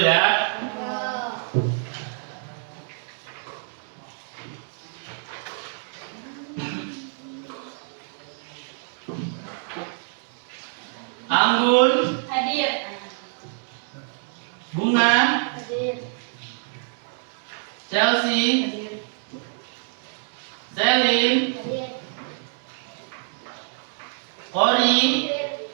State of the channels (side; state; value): left; silent; 61 dB below the other